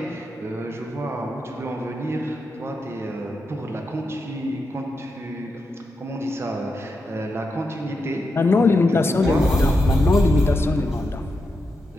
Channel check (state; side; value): normal; both; correlation 0.86